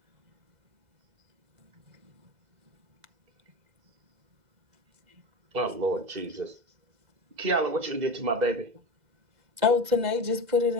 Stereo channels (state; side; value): late; left; 2.0 ms